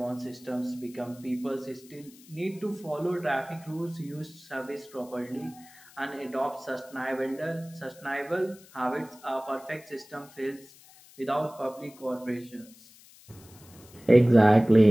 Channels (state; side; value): noise; left; hiss, 24 dB below the sound